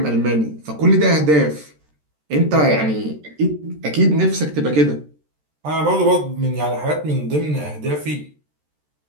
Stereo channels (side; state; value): left; late; 13 ms